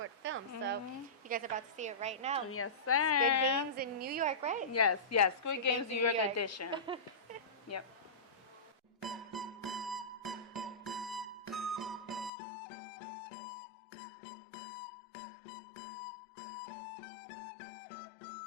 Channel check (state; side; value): drops out; right; at 12.3 s